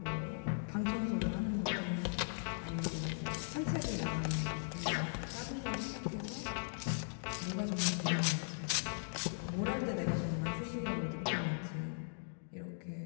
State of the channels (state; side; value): silent; right; digital silence